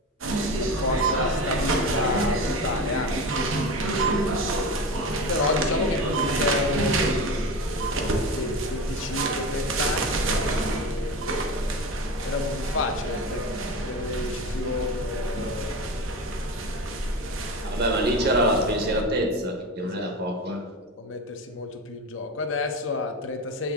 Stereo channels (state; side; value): normal; both; correlation 0.26